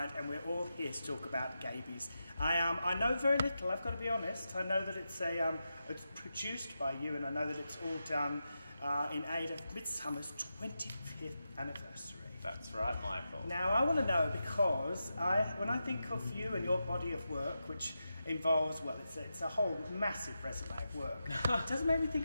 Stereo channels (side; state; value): both; inverted; correlation -0.89